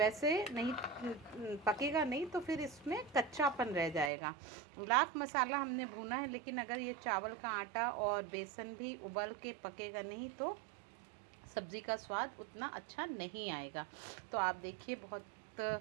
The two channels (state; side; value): drops out; left; at 4.1 s